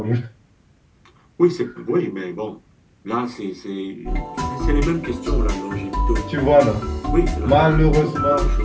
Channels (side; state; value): both; identical; correlation 1.00